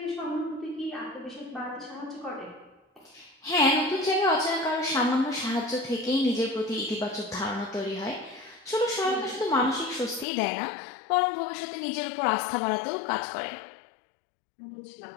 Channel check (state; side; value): drops out; right; at 10.2 s